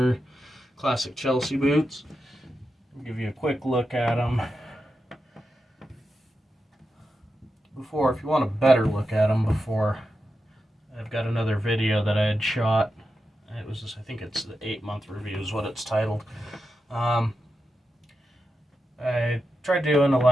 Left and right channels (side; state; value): both; normal; correlation 0.89